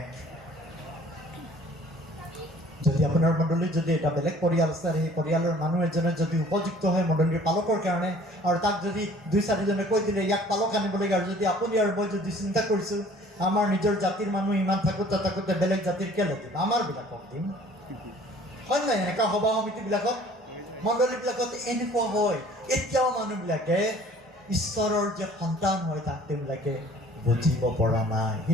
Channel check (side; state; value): both; normal; correlation 0.53